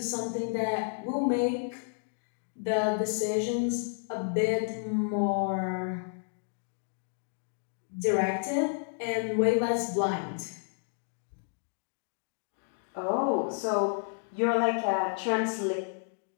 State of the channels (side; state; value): right; silent; digital silence